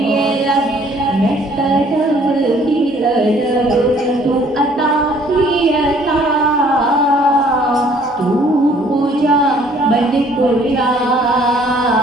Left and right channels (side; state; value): both; normal; correlation 0.59